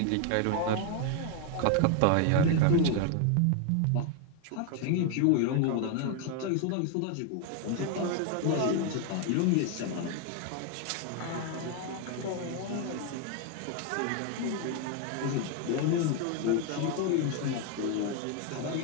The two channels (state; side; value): different; both; correlation 0.01